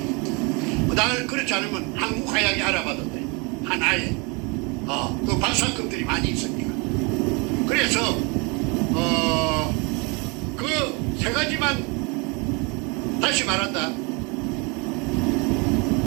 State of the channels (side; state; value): left; quieter; 30.1 dB